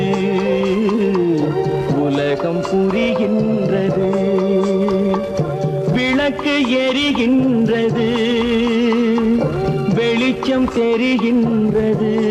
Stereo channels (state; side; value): identical; both; correlation 1.00